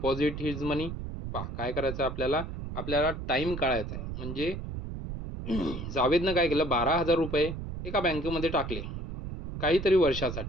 his money? पहा काय करायचं आपल्याला, आपल्याला टाईम काढायचा आहे. म्हणजे जावेदनं काय केलं, 12,000 रुपये एका बँकेमध्ये टाकले काहीतरी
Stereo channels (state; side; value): noise; right; rumble, 7 dB below the sound